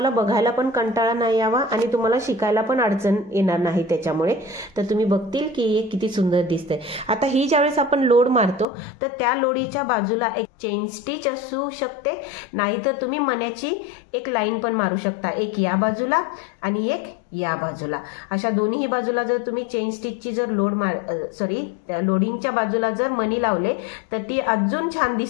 बघायला पण कंटाळा नाही यावा आणि तुम्हाला शिकायला पण अडचण येणार नाही त्याच्यामुळे. तर तुम्ही बघतील की हे किती सुंदर दिसतंय. आता ही ज्यावेळेस आपण लोड मारतो तर त्या लोडीच्या बाजूला एक चेन स्टिच असू शकते, नाहीतर तुम्ही मण्याची एक लाईन पण मारू शकता, एक या बाजूला आणि एक या बाजूला. अशा दोन्ही बाजूला जर तुम्ही चेन स्टिचची जर लोडिंगच्या बाजूला जर मणी लावले तर ती अजून छान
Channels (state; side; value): drops out; right; at 8.7 s